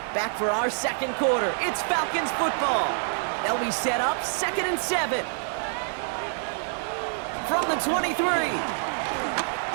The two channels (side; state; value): left; silent; 60 dB below the other